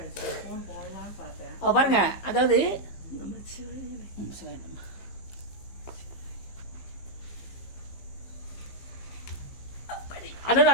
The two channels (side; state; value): right; late; 15 ms